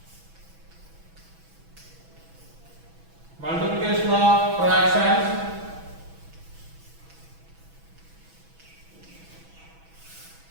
Multiplication of fractions.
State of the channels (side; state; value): left; late; 6.1 ms